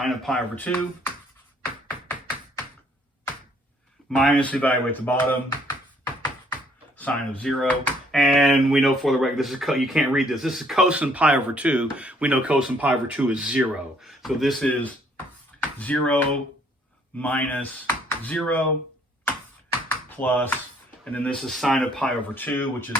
of pi over 2 minus, evaluate the bottom, sine of 0. And we know for the record, this is you can't read this. This is cosine pi over 2. We know cosine pi over 2 is 0. So this is 0 minus 0 plus, and then this is sine of pi over 2, which is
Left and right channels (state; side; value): normal; both; correlation 0.64